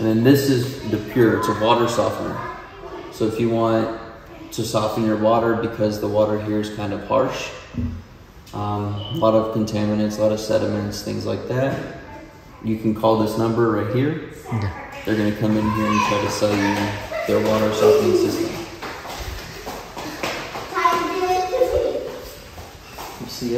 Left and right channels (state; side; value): identical; both; correlation 1.00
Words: then this is the pure, it's a water softener. So if you want to soften your water because the water here is kind of harsh, a lot of contaminants, a lot of sediments, things like that, you can call this number right here. Yeah. They're going to come in here and try to sell you their water softening system. You see